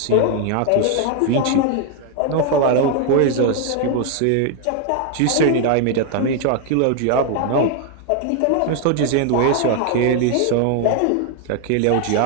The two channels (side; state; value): both; different; correlation 0.00